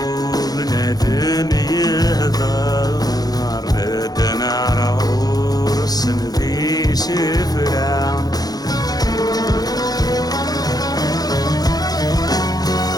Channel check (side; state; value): right; late; 0.19 ms